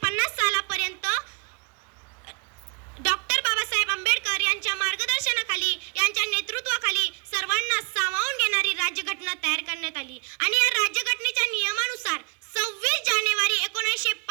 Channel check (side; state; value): left; quieter; 32.4 dB